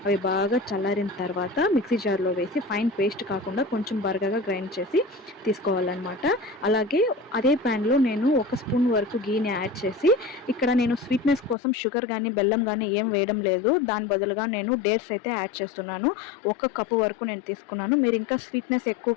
అవి బాగా చల్లారిన తర్వాత మిక్సీ జార్లో వేసి ఫైన్ పేస్ట్ కాకుండా కొంచెం బరకగా గ్రైండ్ చేసి తీసుకోవాలన్నమాట. అలాగే అదే ప్యాన్లో నేను 1 స్పూన్ వరకు గీని యాడ్ చేసి ఇక్కడ నేను స్వీట్నెస్ కోసం షుగర్ కానీ బెల్లం కానీ ఏం వేయడం లేదు. దాని బదులుగా నేను డేట్స్ అయితే యాడ్ చేస్తున్నాను. 1 కప్పు వరకు నేను తీసుకున్నాను. మీరు ఇంకా స్వీట్నెస్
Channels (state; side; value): drops out; right; at 11.6 s